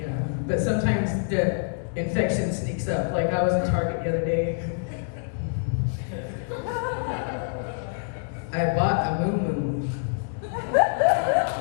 but sometimes the infection sneaks up. Like I was in Target the other day. I bought a moo-moo.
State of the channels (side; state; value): right; silent; digital silence